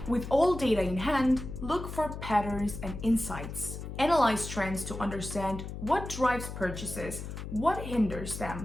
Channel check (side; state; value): left; noise; hum, 8 dB below the sound